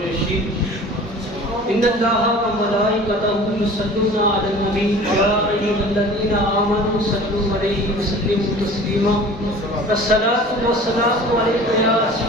إن الله وملائكته يصلون على النبي يا أيها الذين آمنوا صلوا عليه وسلموا تسليما. الصلاة والسلام عليك يا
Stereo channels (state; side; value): normal; both; correlation 0.43